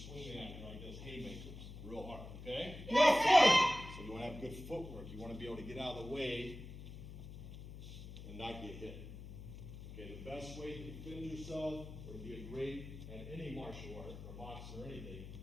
swinging at you like this, haymakers, real hard, okay? Yes, sir. So you want to have good footwork. You want to be able to get out of the way and not get hit. Okay, the best way to defend yourself or to be great at any martial art or boxing or anything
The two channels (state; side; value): noise; left; hum, 11 dB below the sound